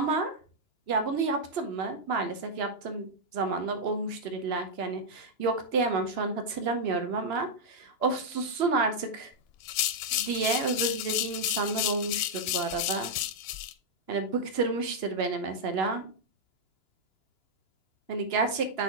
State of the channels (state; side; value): late; right; 2.9 ms